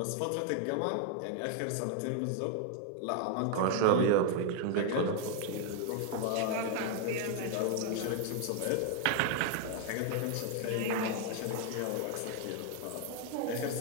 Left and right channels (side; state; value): both; different; correlation 0.01